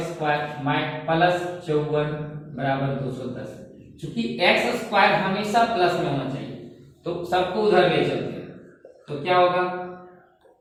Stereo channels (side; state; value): both; identical; correlation 1.00